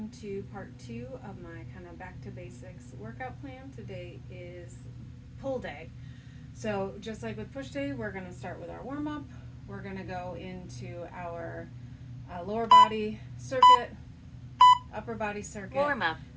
to part 2 of my kind of back to basics workout plan. Today is pull day. So just like with push day, we're going to start with our warm-up. We're going to go into our lower body circuit, upper body circuit, warm-up,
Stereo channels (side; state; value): both; identical; correlation 1.00